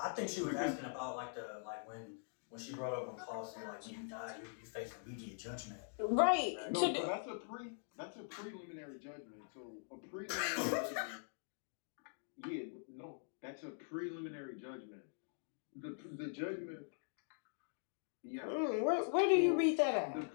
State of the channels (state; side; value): silent; right; digital silence